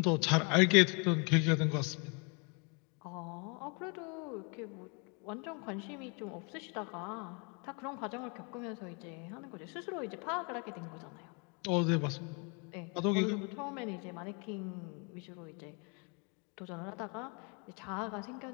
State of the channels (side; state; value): right; quieter; 34.1 dB